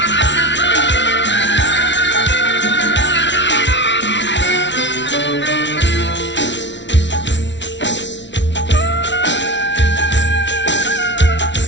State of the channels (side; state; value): right; late; 0.52 ms